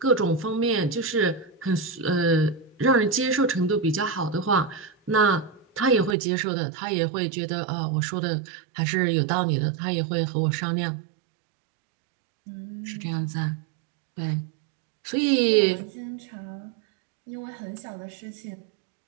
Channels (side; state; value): left; drops out; at 6.2 s